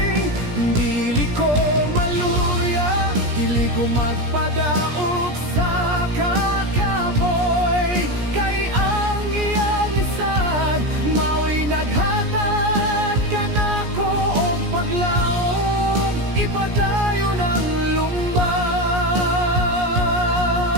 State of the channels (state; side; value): late; left; 17 ms